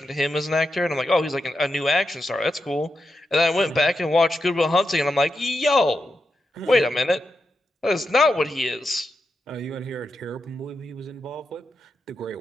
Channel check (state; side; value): normal; both; correlation 0.87